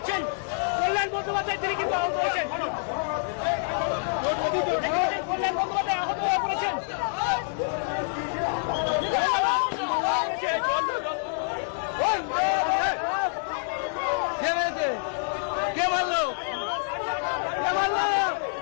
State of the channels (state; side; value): silent; right; 60 dB below the other